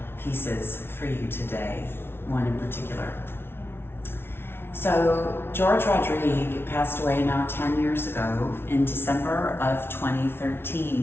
pieces for you today, one in particular. So George Rodrigue passed away now 10 years ago in December of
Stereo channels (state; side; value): late; right; 0.11 ms